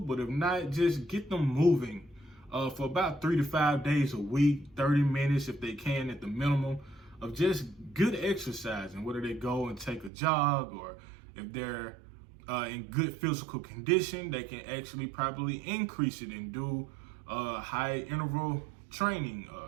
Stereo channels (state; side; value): drops out; left; at 10.1 s